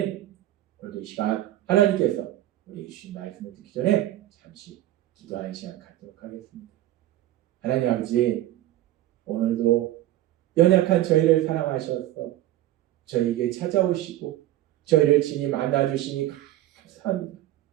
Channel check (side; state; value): left; quieter; 14.3 dB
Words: 오늘도 이 시간 하나님께서 우리에게 주신 말씀을 듣기 전에 잠시 기도하는 시간 갖도록 하겠습니다. 하나님 아버지, 오늘도 연약한 저희를 사랑하셔서 저희에게 찾아오시고 저희를 친히 만나주시니 감사합니다.